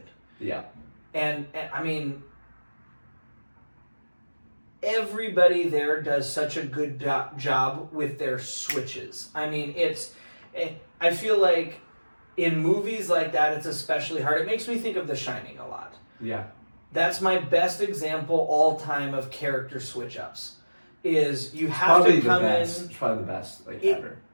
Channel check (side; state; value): both; inverted; correlation -1.00